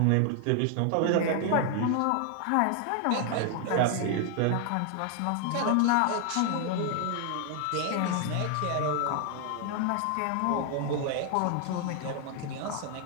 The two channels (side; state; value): both; different; correlation 0.00